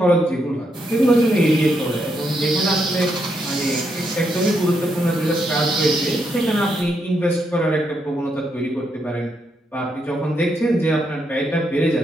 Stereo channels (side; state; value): both; normal; correlation 0.79